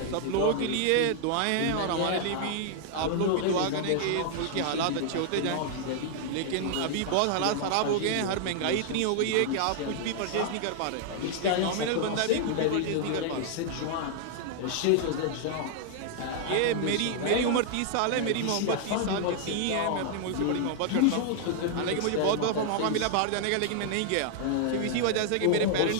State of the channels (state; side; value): different; both; correlation 0.00